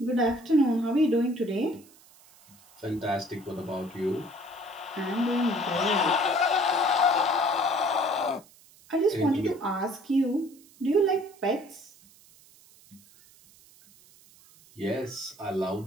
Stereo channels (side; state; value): right; noise; hiss, 26 dB below the sound